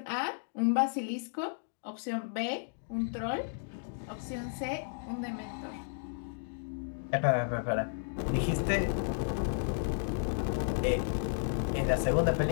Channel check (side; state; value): right; silent; digital silence